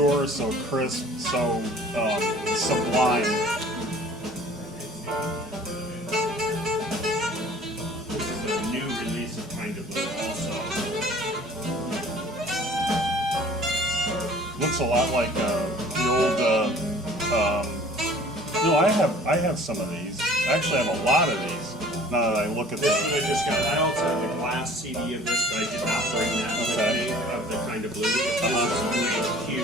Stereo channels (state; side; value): normal; both; correlation 0.49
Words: so crisp, so sublime. This is a new release of Kind of Blue also. Looks a lot like the old. No, I have some of these. I actually have a lot of these. Now that I look at This them. one I just got. I also have the glass CD of this, but I did not bring that with me, of the Kind of Blue. This is